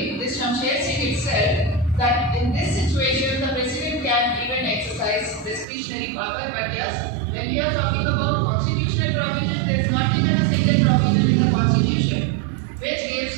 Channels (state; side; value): drops out; left; at 5.7 s